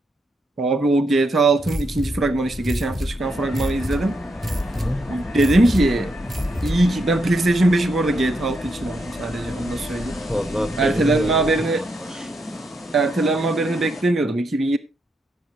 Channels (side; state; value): both; normal; correlation 0.80